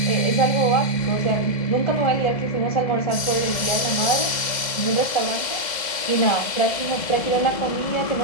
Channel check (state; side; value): late; right; 2.1 ms